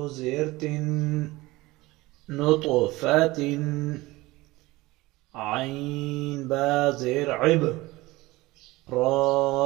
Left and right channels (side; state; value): left; quieter; 20.2 dB